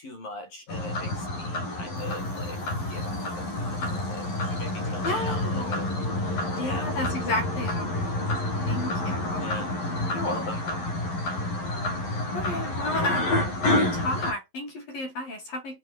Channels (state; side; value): late; right; 11 ms